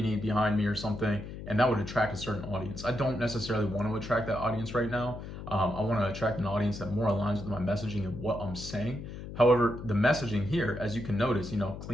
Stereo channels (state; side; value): noise; left; hum, 10 dB below the sound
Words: behind me or something, and that would attract a certain audience. I don't necessarily want to attract that audience right now. I want to attract an audience that more aligns with my messaging and what I'm saying. However, the messaging here, as you can notice,